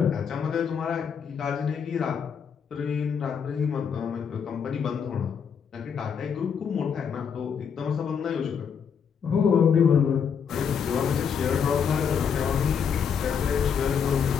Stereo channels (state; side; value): quieter; right; 7.0 dB